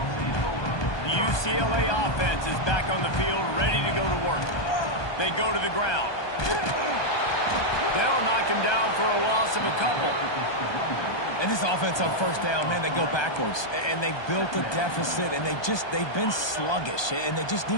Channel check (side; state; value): right; late; 1.2 ms